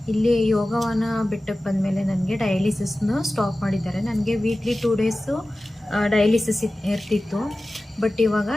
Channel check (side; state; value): both; normal; correlation 0.96